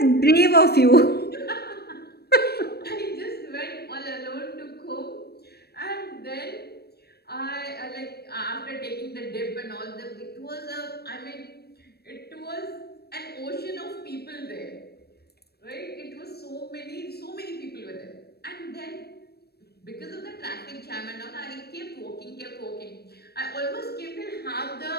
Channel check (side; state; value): right; late; 0.47 ms